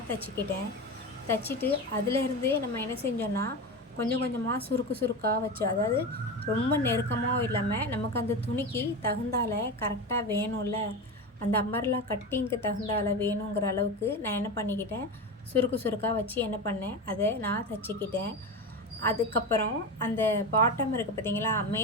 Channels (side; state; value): both; normal; correlation 0.22